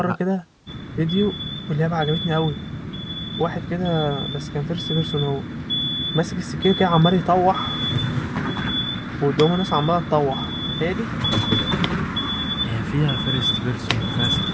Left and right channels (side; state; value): both; identical; correlation 1.00